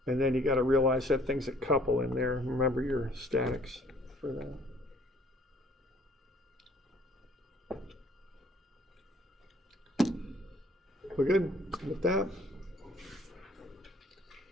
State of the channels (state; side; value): normal; both; correlation 0.57